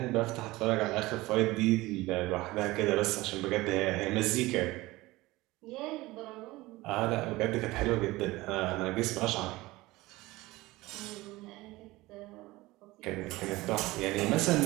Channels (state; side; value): quieter; left; 19.7 dB